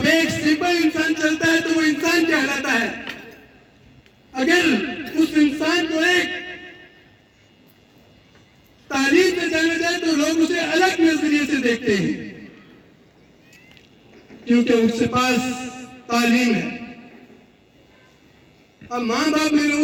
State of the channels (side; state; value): both; identical; correlation 1.00